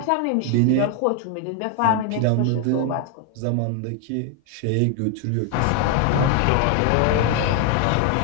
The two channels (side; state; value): both; different; correlation 0.01